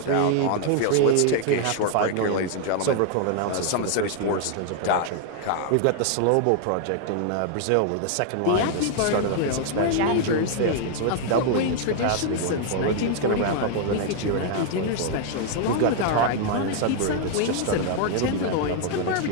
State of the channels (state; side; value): different; both; correlation 0.00